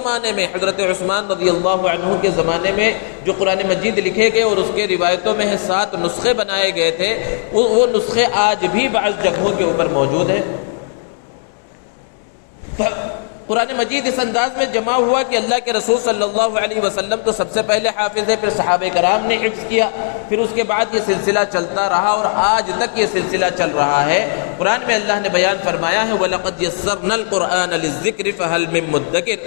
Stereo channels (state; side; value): silent; right; digital silence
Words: میں حضرت عثمان رضی اللہ عنہ کے زمانے میں جو قرآن مجید لکھے گئے اور اس کے روایتوں میں 7 نسخے بنائے گئے تھے, وہ نسخے آج بھی بعض جگہوں کے اوپر موجود ہیں. قرآن مجید اس انداز میں جمع ہوا کہ اللہ کے رسول صلی اللہ علیہ وسلم تو سب سے پہلے حافظ ہے، پھر صحابہ کرام نے حفظ کیا، پھر اس کے بعد یہ سلسلہ چلتا رہا اور آج تک یہ سلسلہ چل رہا ہے۔ قرآن میں اللہ نے بیان فرمایا ہے وَلَقَدْ يَسَّرْنَا الْقُرْآنَ لِلذِّكْرِ فَهَلْ مِن